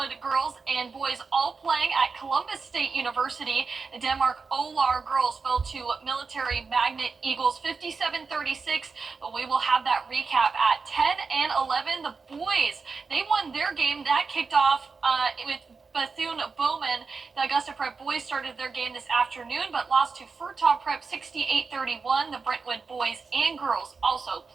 girls, and boys all playing at Columbus State University. The Denmark Olar girls fell to Military Magnet Eagles 57-36, but we will have that recap at 10 and 11. The boys, they won their game. That kicked off with Bethune-Bowman. The Augusta Prep boys started their game this afternoon, but lost to Furtaw Prep 68-31. The Brentwood boys and girls also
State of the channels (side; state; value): left; quieter; 4.7 dB